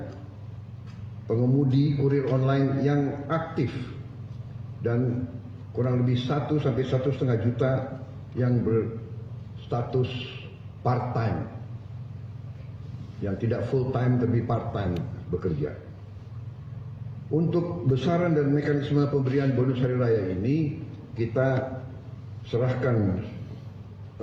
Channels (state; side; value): identical; both; correlation 1.00